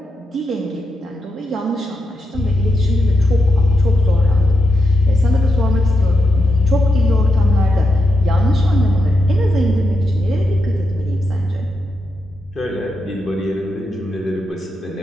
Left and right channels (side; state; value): both; normal; correlation 0.86